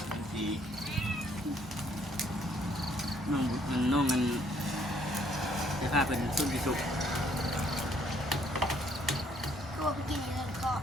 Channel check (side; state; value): both; normal; correlation 0.66